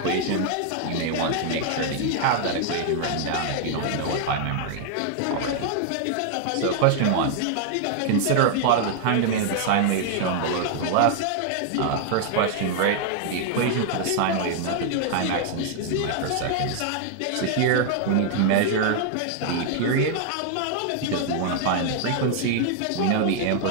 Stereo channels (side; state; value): both; different; correlation 0.00